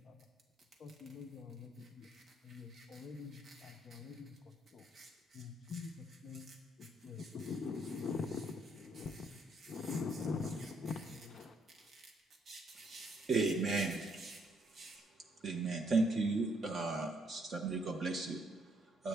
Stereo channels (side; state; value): both; normal; correlation 0.71